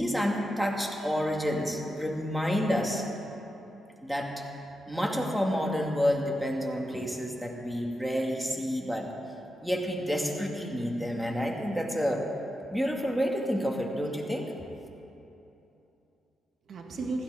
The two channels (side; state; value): both; normal; correlation 0.89